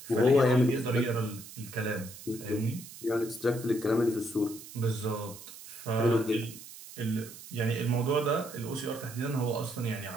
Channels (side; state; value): right; noise; hiss, 15 dB below the sound